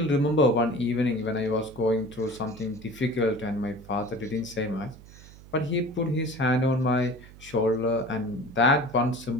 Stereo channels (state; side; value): noise; right; hum, 20 dB below the sound